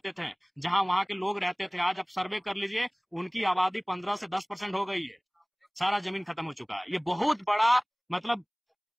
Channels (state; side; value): identical; both; correlation 1.00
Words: थे, जहां वहां के लोग रहते थे, आज आप सर्वे कर लीजिए, उनकी आबादी 15 से 10% हो गई है। सारा जमीन खत्म हो चुका है। ये बहुत बड़ा, मतलब